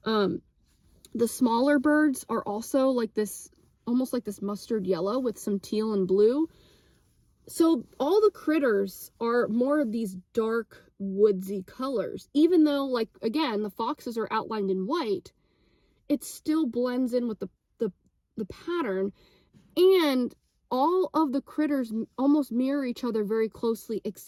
The smaller birds are also like this, almost like this mustard yellow with some teal and blue. So all the critters are more of these dark woodsy colors, even though, like, again, the foxes are outlined in white. It still blends in with the pattern, and all of the critters almost mirror each other very closely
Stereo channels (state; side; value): identical; both; correlation 1.00